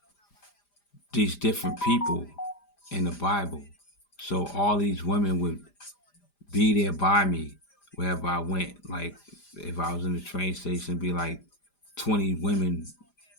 these different people in the Bible. So all these women would be there by me wherever I went. Like if I was in the train station, be like 20 women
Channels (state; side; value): late; right; 5.0 ms